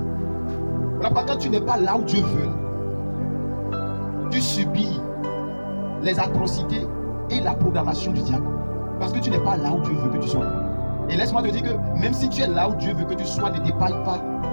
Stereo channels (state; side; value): inverted; both; correlation -1.00